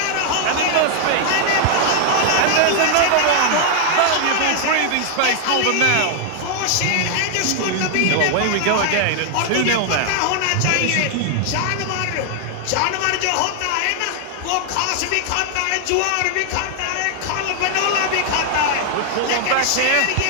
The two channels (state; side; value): different; both; correlation 0.00